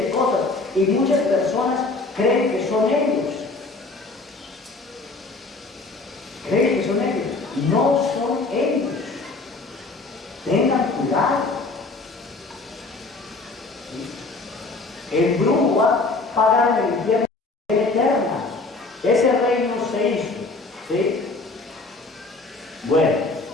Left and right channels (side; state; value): right; quieter; 3.5 dB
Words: cosas. Y muchas personas creen que son ellos. Creen que son ellos. No son ellos. Tengan cuidado. El brujo va a pagar en el infierno eterna. Ese reino se hizo. ¿Sí? Bueno,